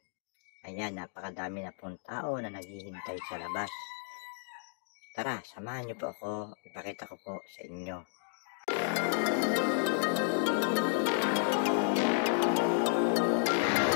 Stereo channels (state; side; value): silent; right; digital silence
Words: Ayan, napakadami na pong tao na naghihintay sa labas. Tara, samahan niyo po ako, ipakita ko po sa inyo